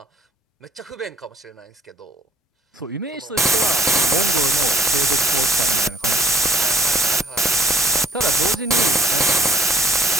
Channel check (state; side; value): normal; both; correlation 0.63